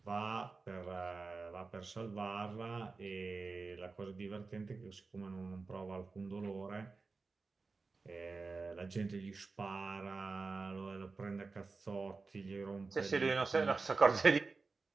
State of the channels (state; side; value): quieter; left; 4.1 dB